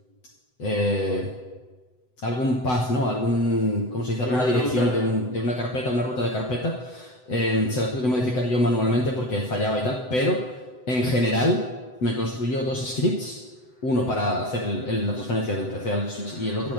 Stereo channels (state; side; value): late; right; 7.9 ms